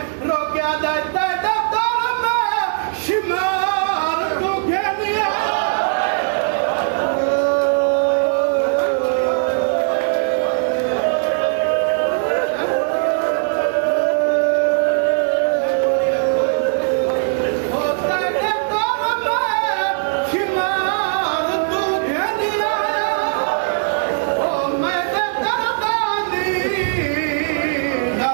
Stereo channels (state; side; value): silent; left; digital silence